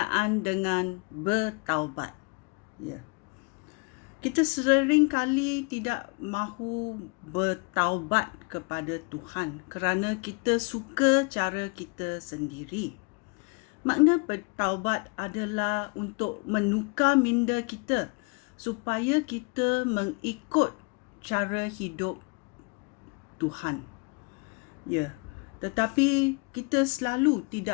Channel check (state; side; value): quieter; right; 32.2 dB